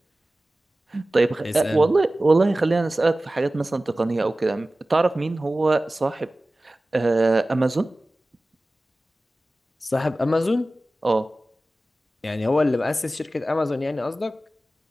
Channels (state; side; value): normal; both; correlation 0.97